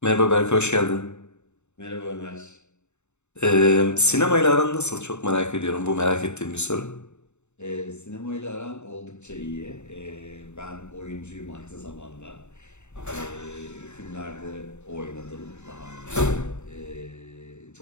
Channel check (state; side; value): late; right; 0.82 ms